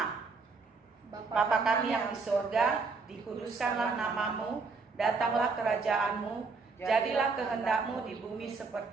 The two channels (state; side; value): quieter; left; 4.4 dB